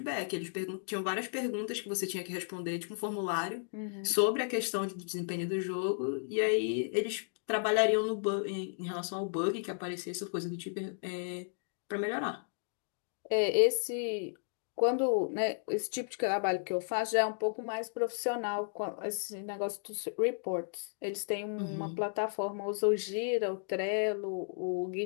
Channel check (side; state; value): right; silent; digital silence